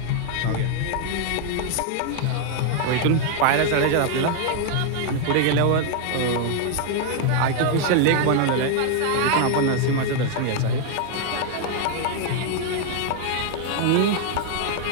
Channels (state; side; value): different; both; correlation 0.00